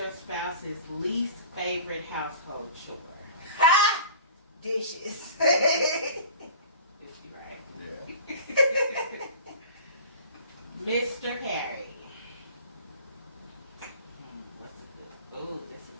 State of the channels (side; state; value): both; inverted; correlation -0.42